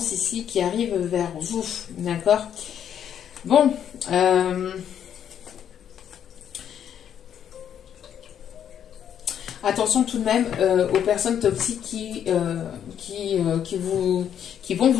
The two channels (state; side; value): quieter; right; 9.2 dB